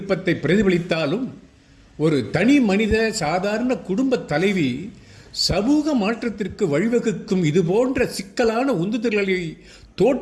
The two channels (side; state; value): both; identical; correlation 1.00